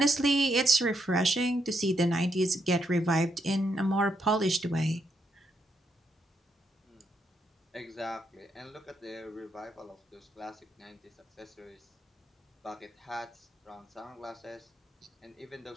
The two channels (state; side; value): normal; both; correlation 0.79